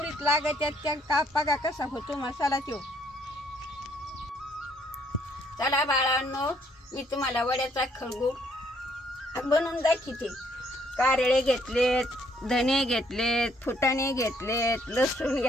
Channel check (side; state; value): both; normal; correlation 0.67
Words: लागायच्या. त्या का बघा कसा होतो मसाला तो. चला बाळांनो, मी तुम्हाला वड्याचा खळगूट बनवून दाखवते. कारळे घेतलेत, धने घेतलेत, फुटाणे घेतलेत, लसूण